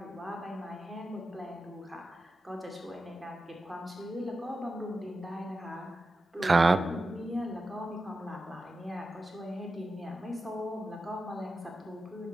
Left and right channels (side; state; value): both; normal; correlation 0.90